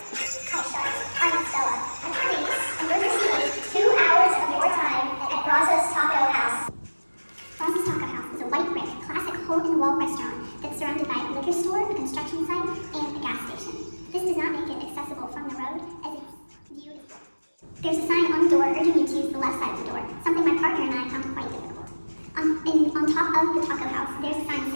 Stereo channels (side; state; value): both; inverted; correlation -1.00